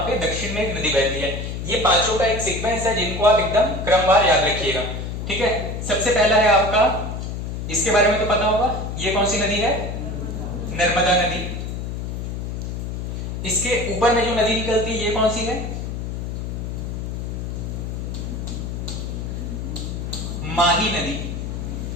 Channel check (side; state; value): left; noise; hum, 5 dB below the sound